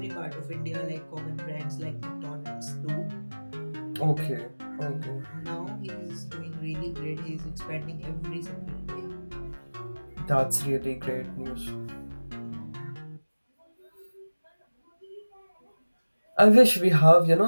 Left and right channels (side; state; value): both; inverted; correlation -1.00